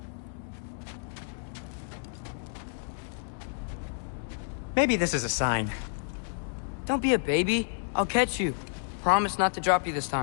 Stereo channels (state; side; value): silent; right; digital silence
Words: Maybe this is a sign. Don't be a baby. I'll catch you. Promise not to drop you this